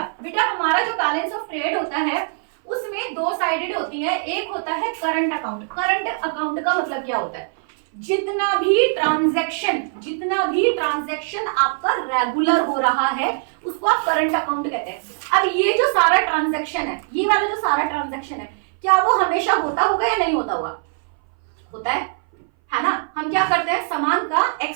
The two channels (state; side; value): silent; left; 60 dB below the other